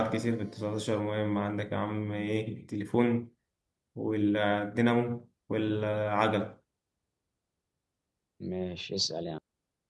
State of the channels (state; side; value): identical; both; correlation 1.00